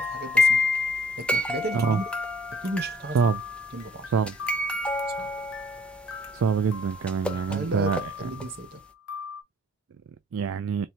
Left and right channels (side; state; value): both; normal; correlation 0.57